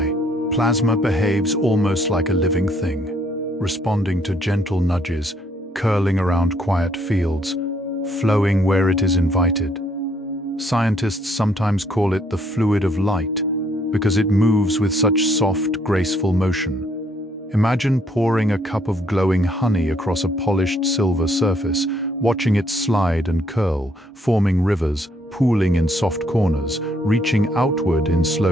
Plasma behaves almost like a living thing, responding to gentle nudges, curling around quiet fields, flowing where it is invited. Scientists sometimes call it the fluid of light because it moves with such soft, graceful motion. Imagine pouring a cup of glowing honey across a polished silver surface, watching it slide and curl, forming rivers, pooling in soft corners, reaching outward in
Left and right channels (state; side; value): normal; both; correlation 0.68